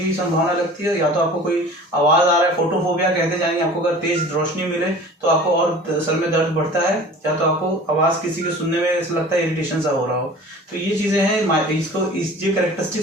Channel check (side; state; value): both; normal; correlation 0.42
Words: संभावना लगती है, या तो आपको कोई आवाज आ रहा है, फोटोफोबिया कहते जाएंगे, आपको अगर तेज रोशनी मिले तो आपको और सर में दर्द बढ़ता है, या तो आपको आवाज किसी के सुनने में ऐसा लगता है इरिटेशन सा हो रहा हो। तो ये चीजें हैं, ये